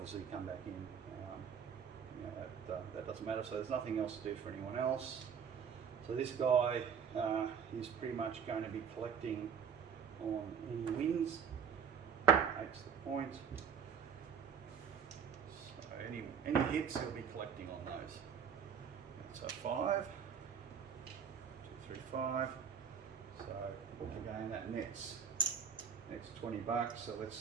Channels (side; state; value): left; quieter; 7.1 dB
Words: come back in. That doesn't matter, so there's nothing else to do for anyone else. So this guy is pretty much going to be collecting on any wins. 8's the point. So any hits he'll be collecting on those. So 5. 5. So again, that nets 20 bucks. So let's